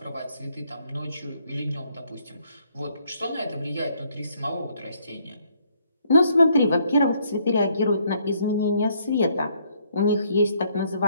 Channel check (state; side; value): inverted; both; correlation -0.68